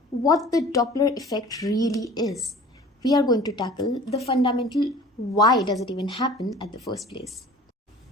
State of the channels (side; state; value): both; normal; correlation 0.45